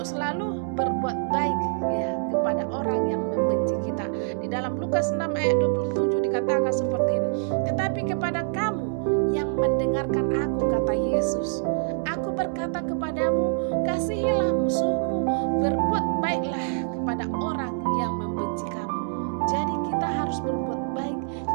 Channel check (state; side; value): silent; left; digital silence